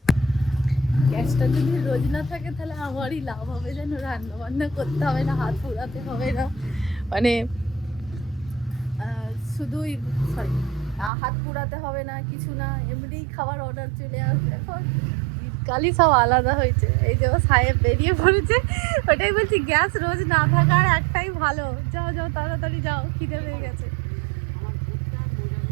গ্যাসটা যদি রোজ না থাকে তাহলে আমারই লাভ হবে, যেন রান্না বান্না করতে হবে না, হাত পোড়াতে হবে না, মানে শুধুই সরি হাত পোড়াতে হবে না, কিছু না, এমনিই খাবার অর্ডার চলে আসবে। এখন শীতকালই সব আলাদা হয়েছে। এই যে সাহেব বেরিয়ে পড়েছে, ওটাই বলছি গ্যাস রোজ না থাকার একটাই ভালো, যাও যাও তাড়াতাড়ি যাও, খিদে পেয়ে গেছে।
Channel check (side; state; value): left; drops out; at 11.1 s